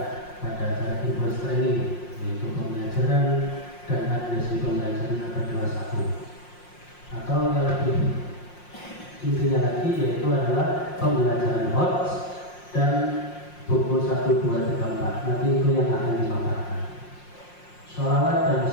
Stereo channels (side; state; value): right; late; 5.6 ms